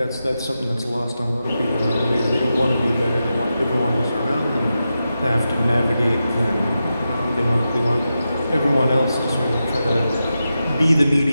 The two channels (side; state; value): both; inverted; correlation -0.90